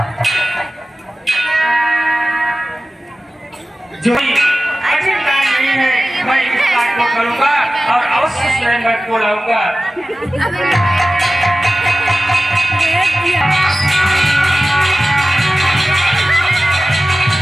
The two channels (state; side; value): normal; both; correlation 0.95